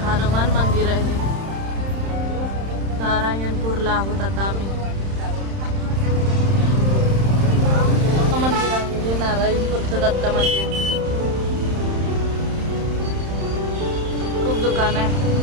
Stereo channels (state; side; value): late; left; 31 ms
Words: हनुमान मंदिर आहे. नारायणपूरला आहोत आता आम्ही. मंदिर आहे हे नारायणपूरचं दत्त मंदिर. खूप दुकान आहे,